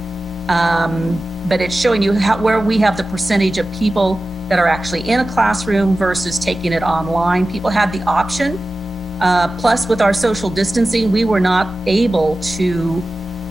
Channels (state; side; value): normal; both; correlation 0.95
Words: but it's showing you where we have the percentage of people that are actually in a classroom versus taking it online. People had the option. Plus, with our social distancing, we were not able to